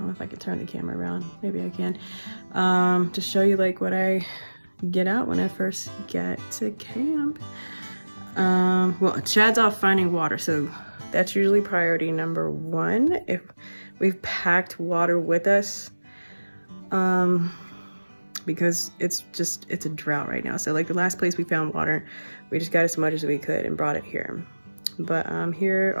know if I could turn the camera around, maybe I can, to show you like what I get out when I first get to camp. Well, Chad's off finding water, so that's usually priority number one. If we've packed water with us, because it's a drought right now. So like the last place we found water, we just got as much as we could and brought it here. But here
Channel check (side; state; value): both; inverted; correlation -1.00